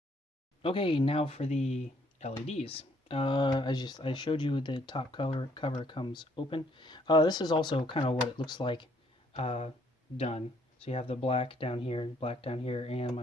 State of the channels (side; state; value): both; normal; correlation 0.66